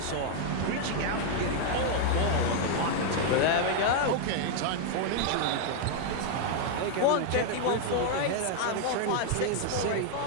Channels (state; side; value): different; both; correlation 0.00